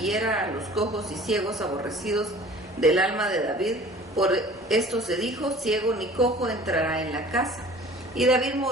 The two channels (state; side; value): normal; both; correlation 0.46